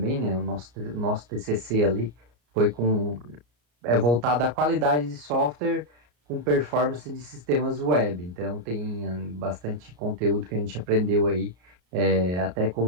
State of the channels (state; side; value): late; left; 34 ms